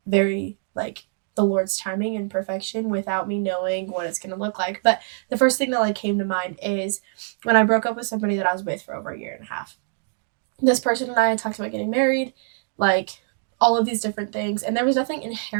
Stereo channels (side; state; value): left; silent; 61 dB below the other